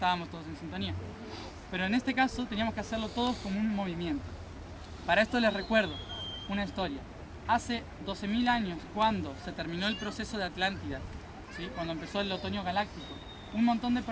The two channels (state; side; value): identical; both; correlation 1.00